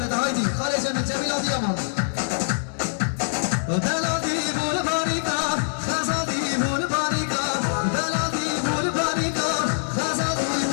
هایدی خاله جمیل جمیل آدی امان دلادی بول باریکا خزادی بول باریکا دلادی بول باریکا خزادی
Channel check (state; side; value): silent; right; digital silence